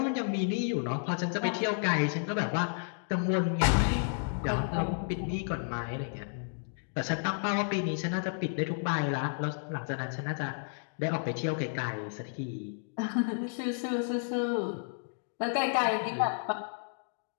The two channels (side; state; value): right; silent; digital silence